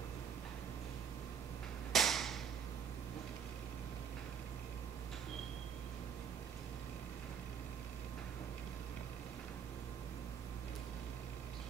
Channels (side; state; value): left; quieter; 7.2 dB